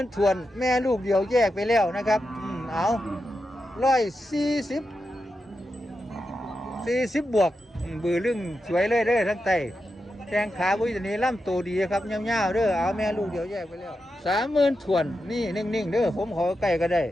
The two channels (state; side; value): normal; both; correlation 0.88